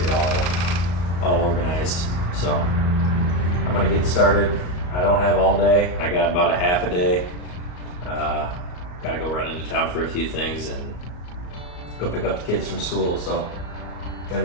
all organized. So I'm gonna get started. I don't have all day. I got about a half a day. Gotta go run into town for a few things and go pick up the kids from school. So gotta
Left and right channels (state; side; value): late; right; 34 ms